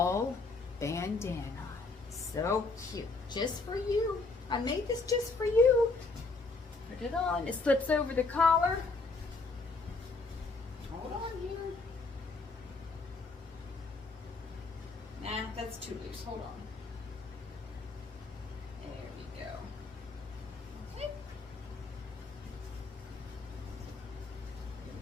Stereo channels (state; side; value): quieter; right; 3.7 dB